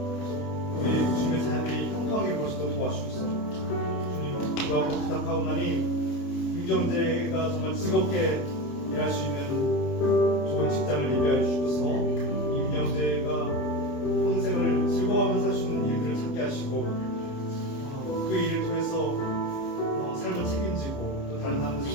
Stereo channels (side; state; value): right; late; 29 ms